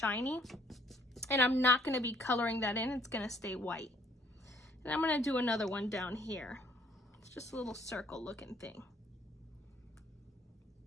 And I'm not gonna be coloring that in, it's gonna stay white. And I'm gonna do another one down here. It's just a little circle looking thing.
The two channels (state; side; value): normal; both; correlation 0.63